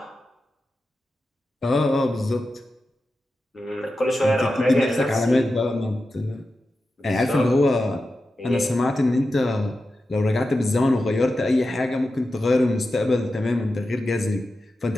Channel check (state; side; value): normal; both; correlation 0.92